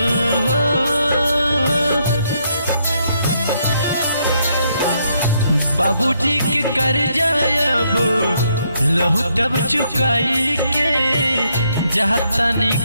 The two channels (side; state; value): both; inverted; correlation -0.74